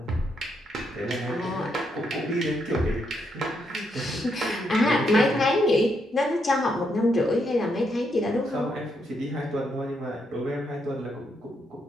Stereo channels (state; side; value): normal; both; correlation 0.78